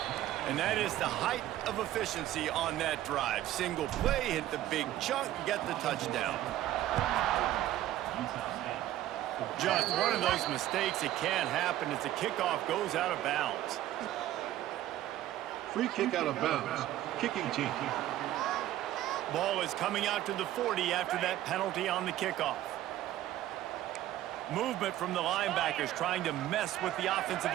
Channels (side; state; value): left; quieter; 13.7 dB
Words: And that is the height of efficiency on that drive. Single play, hit the big chunk, get the touchdown. Just one of those mistakes that can't happen as the kickoff goes out of bounds. Free kick out of bounds. Kicking team. Ball is coming out to the 40 after that penalty on the kickoff. Movement from the linebackers trying to mess with the offensive